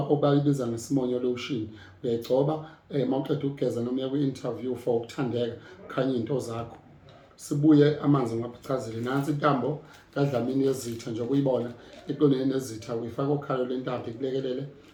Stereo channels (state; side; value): identical; both; correlation 1.00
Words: ngesimonyo lotion. Uyayigcoba mawuqeda ukugeza noma uya kwi-interview for ukuthandeka khanye into zakho. Sibuye amanzi ngaphucazile nansi intambo kaDlamini yezitha nje ukuyibona eqondene nezitha uyifaka okhalo lentambo ikulekelele